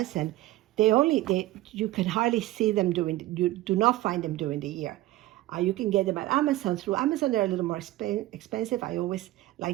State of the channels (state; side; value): quieter; left; 16.9 dB